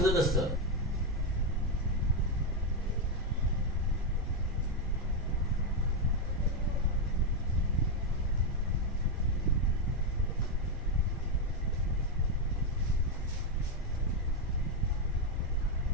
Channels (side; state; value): both; normal; correlation 0.04